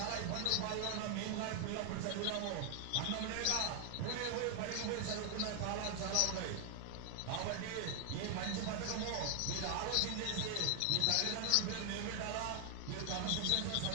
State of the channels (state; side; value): different; both; correlation 0.00